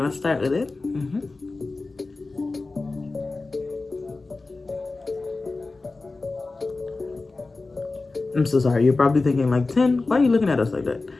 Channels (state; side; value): quieter; right; 3.6 dB